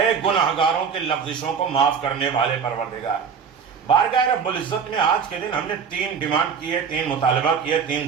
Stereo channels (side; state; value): left; quieter; 6.5 dB